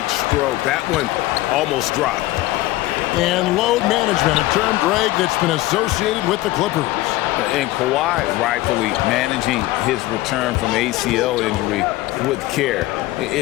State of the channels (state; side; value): quieter; right; 17.7 dB